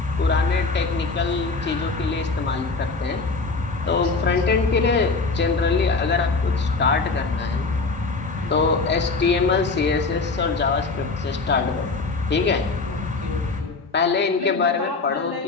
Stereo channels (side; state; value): right; quieter; 4.0 dB